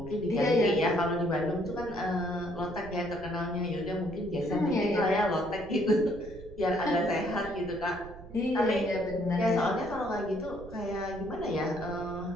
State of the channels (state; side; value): noise; right; rumble, 16 dB below the sound